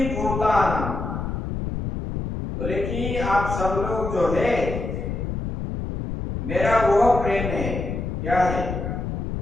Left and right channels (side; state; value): left; noise; rumble, 4 dB below the sound